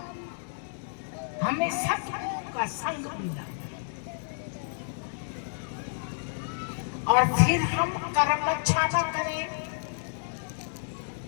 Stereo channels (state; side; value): silent; right; 58 dB below the other